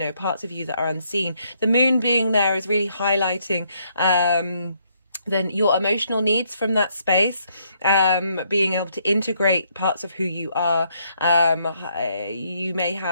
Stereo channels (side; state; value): both; inverted; correlation -0.72